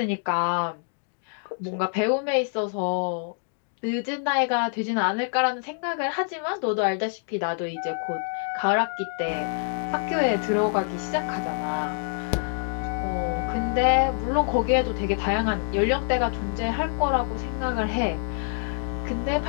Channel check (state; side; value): silent; right; 61 dB below the other